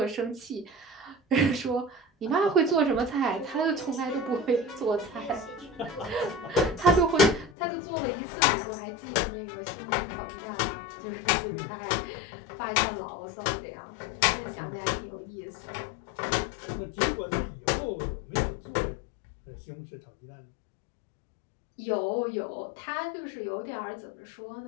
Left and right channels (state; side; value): drops out; right; at 7.5 s